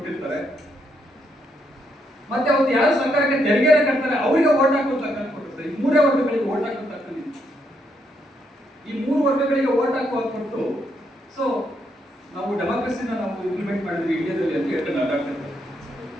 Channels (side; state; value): both; normal; correlation 0.76